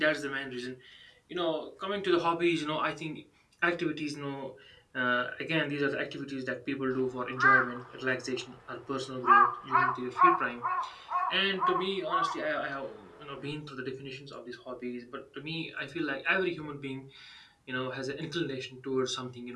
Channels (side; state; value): both; identical; correlation 1.00